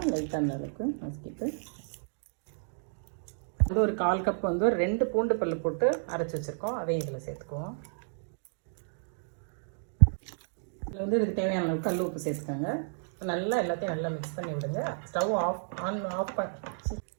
லைட்டாக அந்த அளவுக்கு நசுக்கிட்டு ஒரு 1/4 கப் ஒரு 2 பூண்டு பல்லு போட்டு அரைச்சி வச்சுருக்கோம். அதையும் இதில் சேர்த்துக்குவோம். இதில் இதுக்கு தேவையான அளவுக்கு கல் உப்பு சேர்த்துக்கோங்க. நல்லா எல்லாத்தையும் நல்லா மிக்ஸ் பண்ணி விடுங்க. ஸ்டவ் ஆஃப்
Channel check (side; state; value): left; silent; digital silence